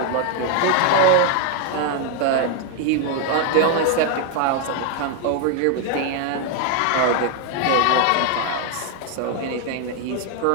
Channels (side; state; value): both; different; correlation 0.00